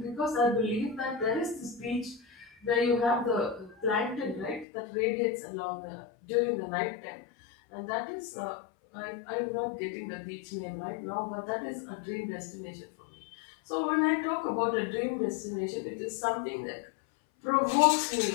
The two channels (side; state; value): right; drops out; at 4.7 s